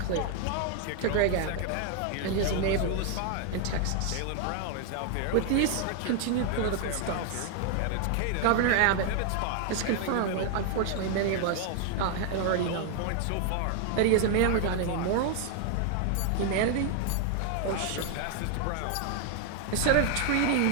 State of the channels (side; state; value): both; different; correlation 0.00